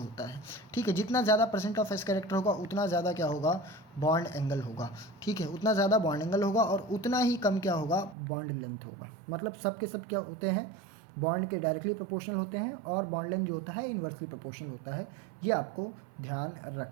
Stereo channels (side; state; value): left; drops out; at 8.2 s